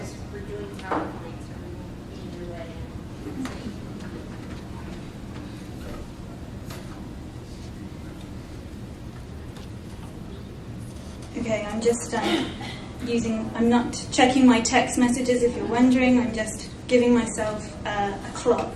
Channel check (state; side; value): identical; both; correlation 1.00